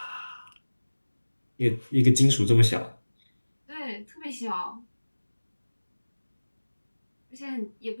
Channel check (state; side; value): inverted; both; correlation -1.00